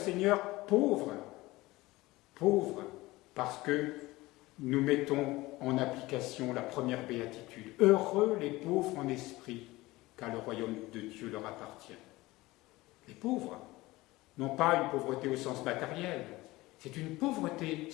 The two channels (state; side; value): quieter; right; 19.7 dB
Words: pauvres, parce que nous mettons en application la première béatitude. Heureux les pauvres en esprit, car le royaume de Dieu leur appartient. Les pauvres, non pas une pauvreté au sens matériel, c'est une pauvreté